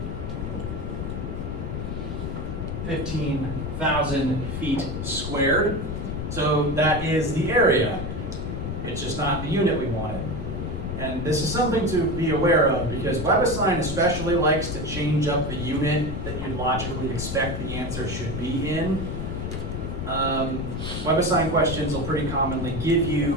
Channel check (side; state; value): left; noise; rumble, 4 dB below the sound